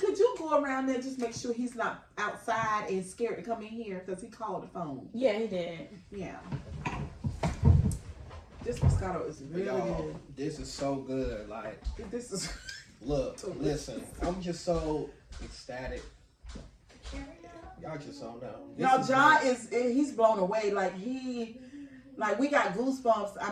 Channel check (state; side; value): identical; both; correlation 1.00